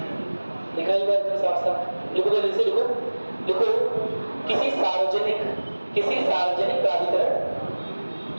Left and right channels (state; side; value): inverted; both; correlation -1.00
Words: लिखा ही बात साफ साफ लिखो, जल्दी से लिखो। लिखो, किसी सार्वजनिक प्राधिकरण